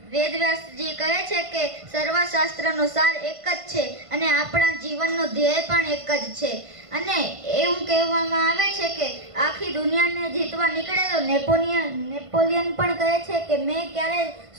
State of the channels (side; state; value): left; late; 1.5 ms